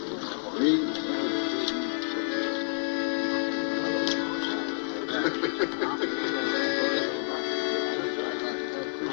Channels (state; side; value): silent; right; 59 dB below the other